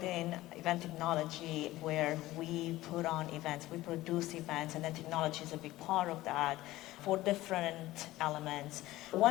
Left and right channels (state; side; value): quieter; right; 17.0 dB